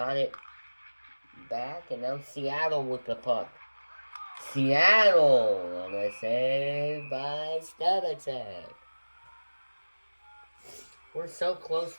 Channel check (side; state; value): both; inverted; correlation -1.00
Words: it back, and now Seattle with the puck. Seattle on a save by Stebatek. We're so close